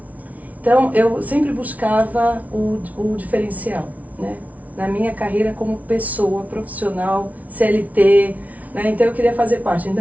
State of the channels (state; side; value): late; left; 0.071 ms